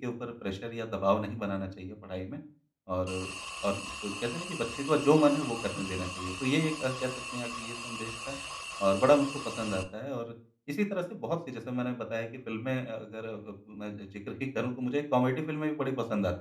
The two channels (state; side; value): identical; both; correlation 1.00